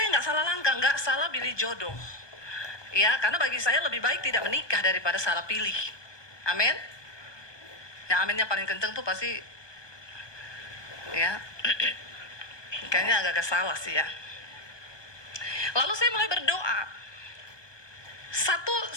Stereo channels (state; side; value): late; right; 1.2 ms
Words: nggak salah langkah, nggak salah pilih jodoh. Ya, karena bagi saya lebih baik tidak menikah daripada salah pilih. Amin. Ya, aminnya paling kenceng tuh pasti, ya, kayaknya agak-agak salah sih ya. Lalu saya mulai berdoa.